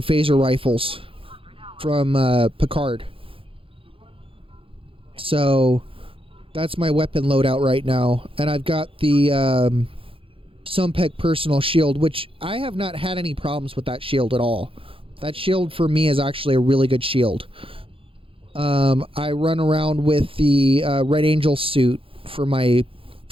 phaser rifles from Picard. So that's my weapon loadout right now, and I've got the Sumpec personal shield, which I have not had any problems with that shield at all. That shield for me is actually a really good shield. I run around with the Red Angel suit for my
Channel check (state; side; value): late; left; 0.26 ms